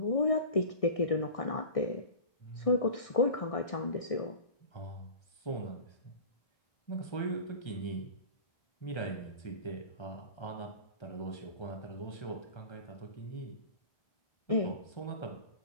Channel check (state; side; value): late; right; 1.6 ms